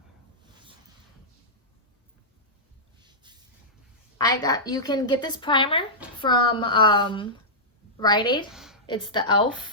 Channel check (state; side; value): normal; both; correlation -0.13